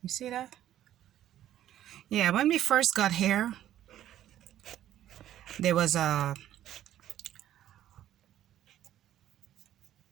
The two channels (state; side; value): quieter; left; 12.0 dB